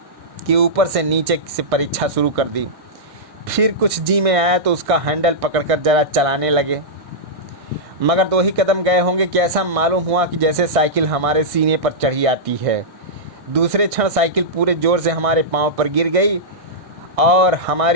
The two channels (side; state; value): left; late; 1.6 ms